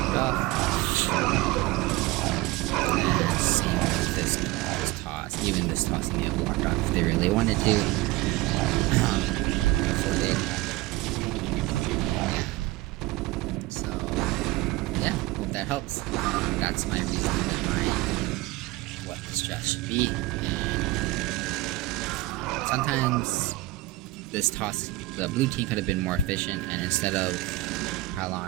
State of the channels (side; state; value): left; quieter; 18.4 dB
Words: off. And same as this toss. Even this toss can be blocked off if they really wanted to. Before they attack. Yeah. So yeah, hope that helps. That's my reason behind what the strat should be. Sometimes this toss, the blue team could have been more efficient, and instead of